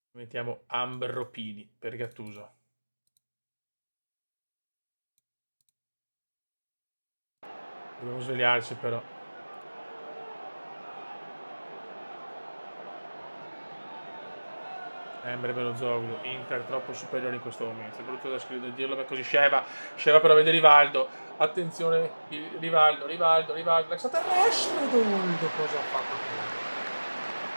Mettiamo Ambropini per Gattuso. Dobbiamo svegliarci però. Belozoglu, Inter troppo superiore in questo momento. È brutto da scrivere, dirlo, ma così Sheva però vede Rivaldo. Attenzione, Rivaldo. L'extraterrestre, cosa ha fatto?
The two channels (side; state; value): both; inverted; correlation -1.00